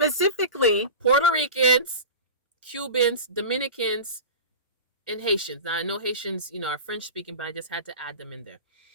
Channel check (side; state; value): both; inverted; correlation -0.32